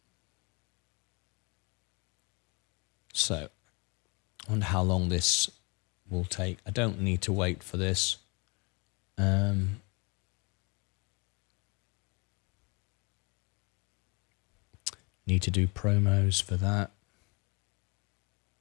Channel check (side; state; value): right; quieter; 29.8 dB